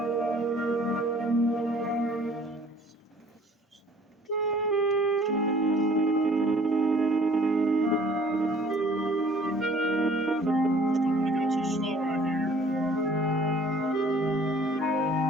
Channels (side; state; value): both; normal; correlation 0.54